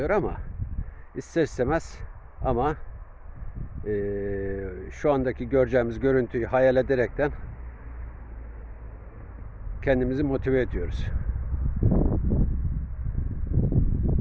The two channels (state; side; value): identical; both; correlation 1.00